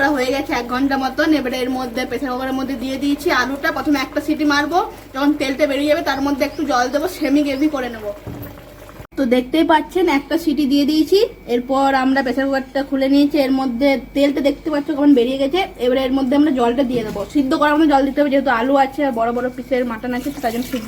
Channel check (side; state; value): both; identical; correlation 1.00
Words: হয়ে গেছে 1 ঘন্টা মতন। এবারে এর মধ্যে প্রেসার কুকারের মধ্যে দিয়ে দিয়েছি আলুটা। প্রথমে একটা সিটি মারবো, যখন তেলটা বেরিয়ে যাবে তার মধ্যে একটু জল দেবো, সেমি গ্রেভি করে নেবো। তো দেখতেই পাচ্ছেন একটা সিটি দিয়ে দিয়েছি। এরপর আমরা প্রেসার কুকারটা খুলে নিয়েছি, এর মধ্যে তেলটা দেখতে পাচ্ছ কেমন বেরিয়ে গেছে। এবারে এর মধ্যে আমরা জলটা দিয়ে দেবো, সিদ্ধ করার মতো জল দিতে হবে, যেহেতু আলু আছে আর বড় বড় পিসের মাটন আছে, তার জন্য